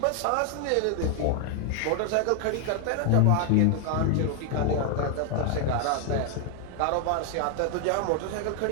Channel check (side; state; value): both; different; correlation 0.00